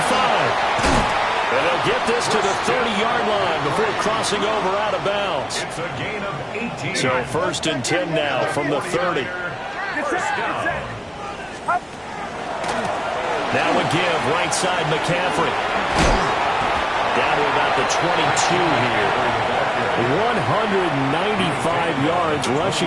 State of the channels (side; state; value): both; identical; correlation 1.00